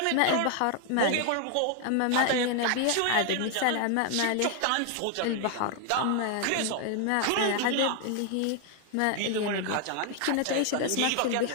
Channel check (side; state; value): both; different; correlation 0.00